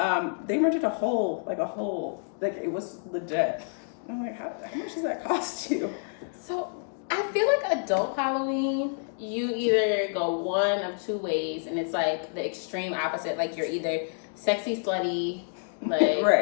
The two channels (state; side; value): silent; right; digital silence